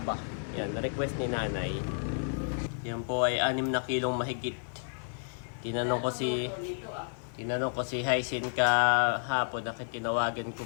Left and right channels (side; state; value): right; silent; 57 dB below the other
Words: Yan, request ni nanay. Yan po ay 6 na kilong mahigit. Tinanong ko si Hyacin kahapon, tinawagan